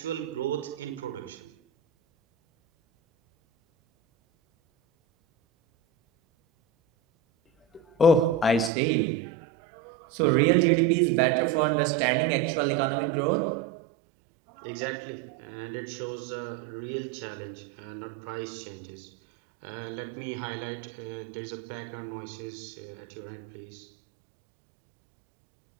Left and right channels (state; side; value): drops out; left; at 8.7 s